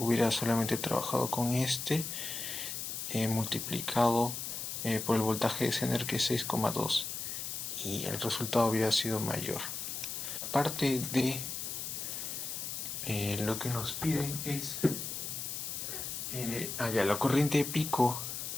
solamente trabajado con este multiplicado por el voltaje de Zener, que es 6,2, y el resultado hubiera sido mayor. Aparte de lo que nos piden es la corriente de pico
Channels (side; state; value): left; noise; hiss, 5 dB below the sound